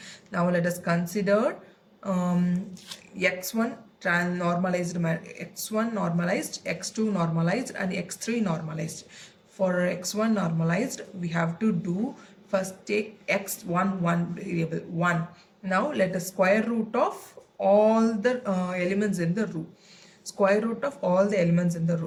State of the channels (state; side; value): identical; both; correlation 1.00